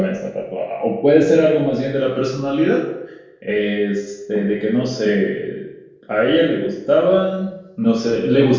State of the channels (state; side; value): identical; both; correlation 1.00